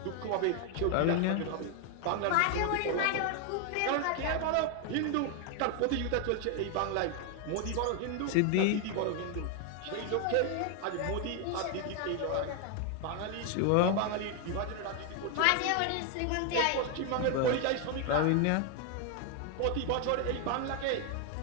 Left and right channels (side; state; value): both; different; correlation 0.01